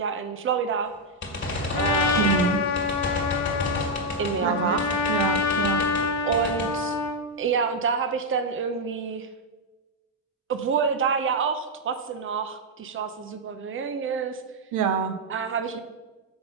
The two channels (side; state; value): both; normal; correlation 0.00